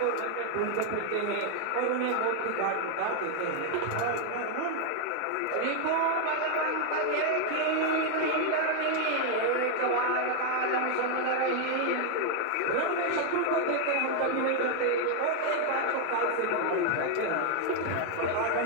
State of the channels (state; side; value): different; both; correlation 0.00